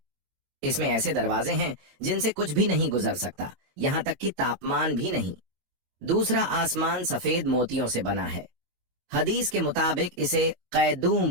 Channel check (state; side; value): late; left; 21 ms